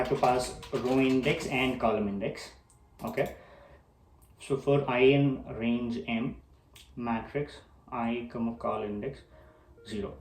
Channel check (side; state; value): both; identical; correlation 1.00